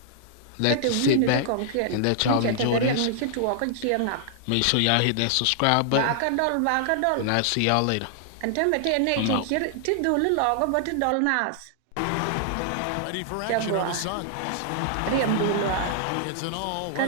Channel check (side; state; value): both; different; correlation -0.01